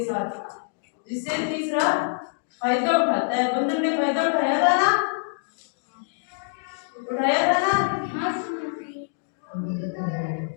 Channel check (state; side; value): silent; right; digital silence